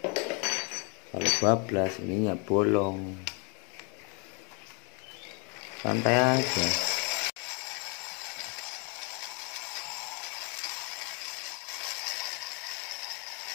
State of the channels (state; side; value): quieter; right; 34.3 dB